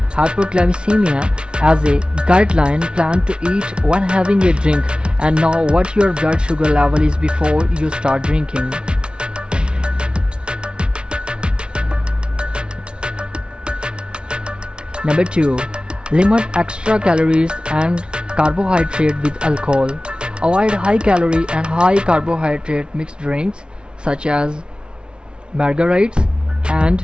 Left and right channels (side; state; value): left; late; 0.056 ms